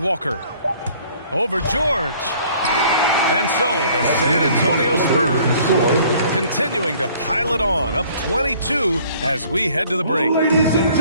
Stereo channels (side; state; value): both; inverted; correlation -0.56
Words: Over George. And so the San Antonio Spurs continuing to pile it on, up 22 as we head to the break.